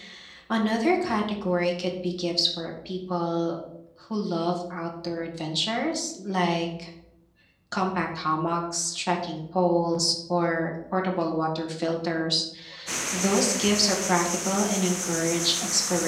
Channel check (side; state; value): both; identical; correlation 1.00